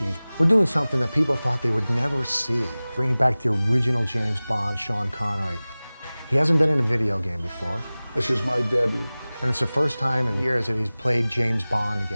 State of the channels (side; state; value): both; inverted; correlation -0.99